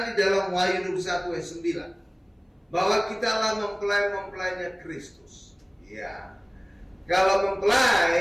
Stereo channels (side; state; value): both; identical; correlation 1.00